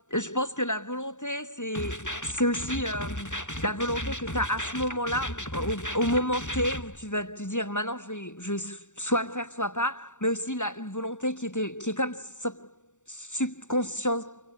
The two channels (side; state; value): right; late; 0.85 ms